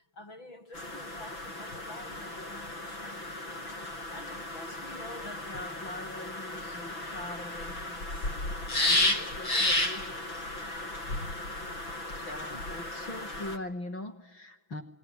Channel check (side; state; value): right; late; 6.0 ms